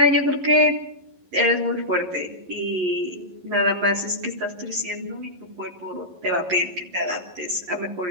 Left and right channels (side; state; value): left; late; 11 ms